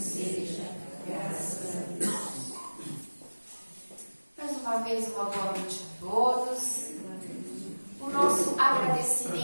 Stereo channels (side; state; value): both; inverted; correlation -1.00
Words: graças a Deus. Mais uma vez, uma boa noite a todos. O nosso